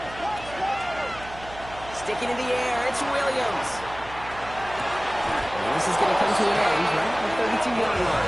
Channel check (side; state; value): right; noise; hum, 16 dB below the sound